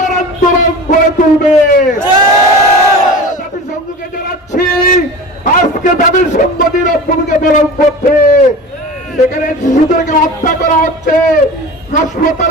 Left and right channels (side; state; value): both; normal; correlation 0.34